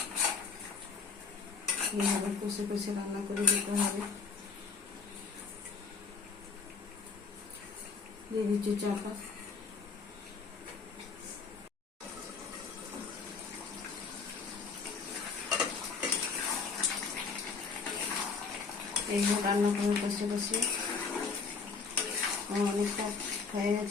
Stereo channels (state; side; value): quieter; right; 5.1 dB